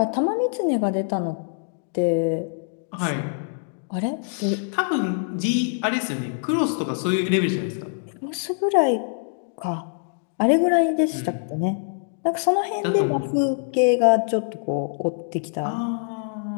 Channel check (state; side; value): silent; right; digital silence